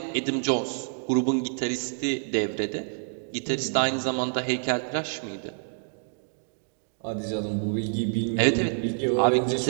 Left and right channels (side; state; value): left; silent; digital silence